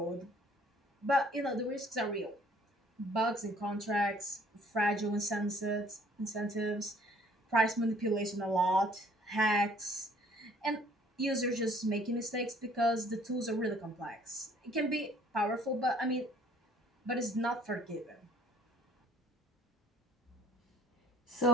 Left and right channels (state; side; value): normal; both; correlation 0.58